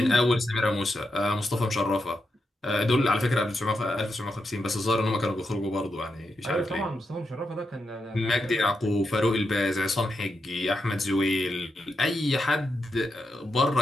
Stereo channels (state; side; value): normal; both; correlation 0.85